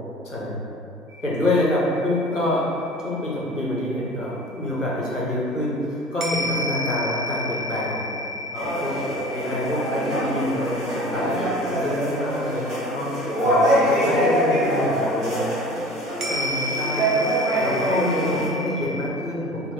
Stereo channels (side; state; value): both; normal; correlation 0.41